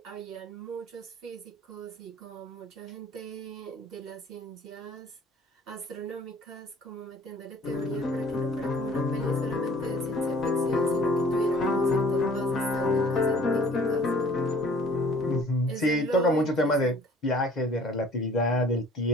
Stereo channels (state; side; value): normal; both; correlation 0.52